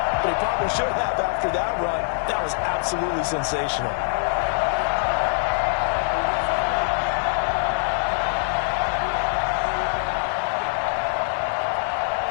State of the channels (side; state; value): right; silent; digital silence